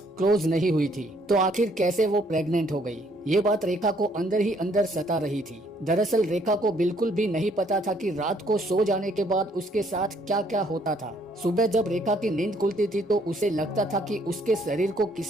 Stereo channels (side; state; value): both; normal; correlation 0.66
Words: क्लोज नहीं हुई थी, तो आखिर कैसे वो प्रेग्नेंट हो गई? ये बात रेखा को अंदर ही अंदर सता रही थी। दरअसल रेखा को बिल्कुल भी नहीं पता था कि रात को सो जाने के बाद उसके साथ क्या क्या होता था। सुबह जब रेखा की नींद खुलती थी तो उसे लगता था कि उसके शरीर को